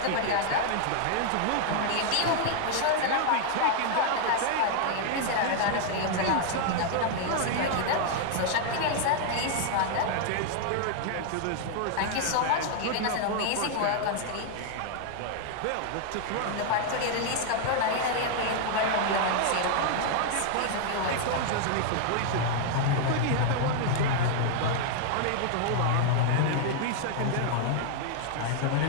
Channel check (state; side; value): different; both; correlation 0.00